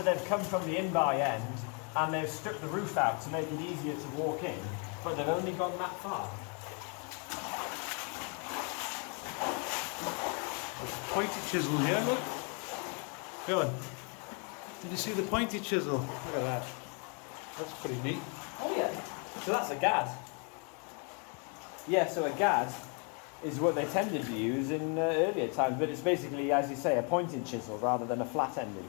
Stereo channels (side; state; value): right; quieter; 37.3 dB